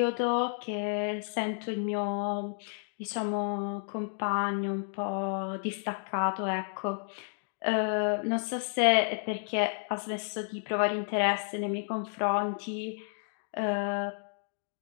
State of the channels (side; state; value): right; silent; digital silence